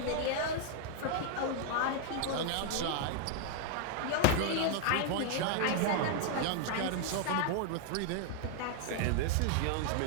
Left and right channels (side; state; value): both; different; correlation 0.00